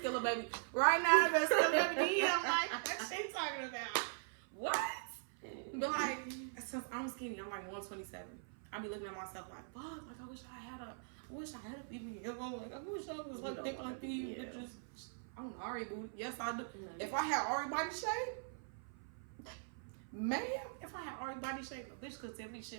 baby. Right now, I've been Skilla baby. I'm like, what she talking about? What? But like, since I'm skinny, I'm like 127. I be looking at myself like, fuck, like I wish I had a BBL. Like I wish I was like thick like these bitches. I'm Ari booty. Yes, I do. If I had Ari body shape, man, if I had Ari body shape, a bitch could tell me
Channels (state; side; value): silent; left; 50 dB below the other